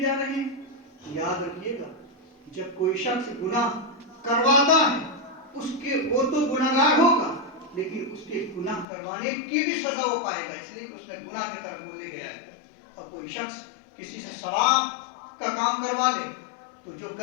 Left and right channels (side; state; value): right; drops out; at 8.8 s